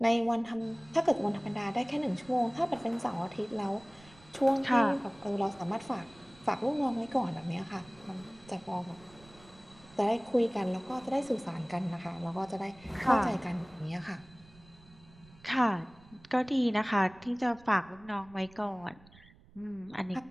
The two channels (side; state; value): right; noise; rumble, 24 dB below the sound